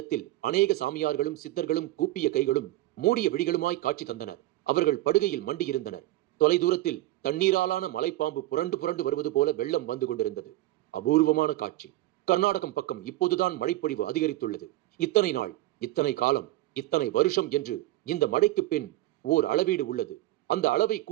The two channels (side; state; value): left; quieter; 17.0 dB